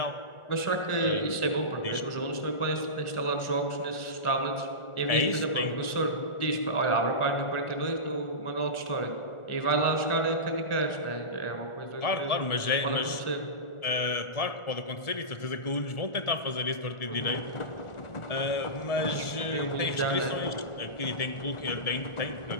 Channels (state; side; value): late; right; 1.4 ms